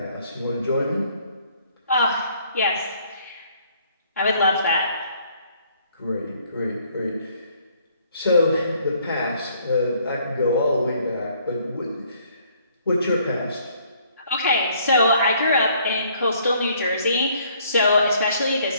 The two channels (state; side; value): inverted; both; correlation -0.63